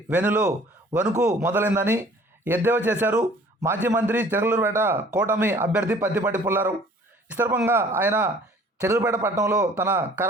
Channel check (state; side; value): normal; both; correlation 0.52